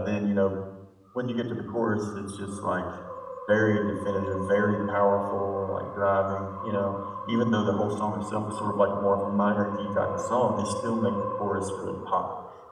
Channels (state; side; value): identical; both; correlation 1.00